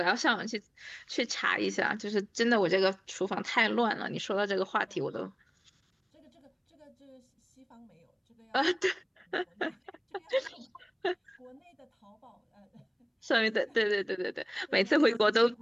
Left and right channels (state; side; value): identical; both; correlation 1.00